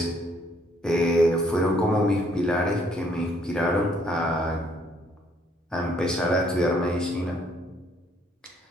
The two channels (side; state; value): both; normal; correlation 0.66